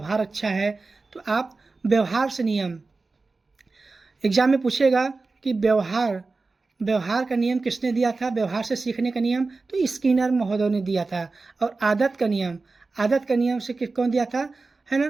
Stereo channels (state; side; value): quieter; left; 3.8 dB